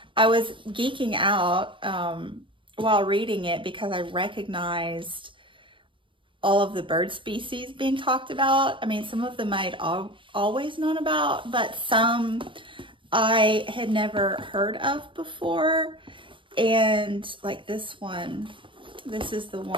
I was geeking out while reading it because I recognized all of the bird species being talked about. I mean, some of them I'd always known about, but some I had never heard of before. And like this one, this is the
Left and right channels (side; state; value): left; late; 0.24 ms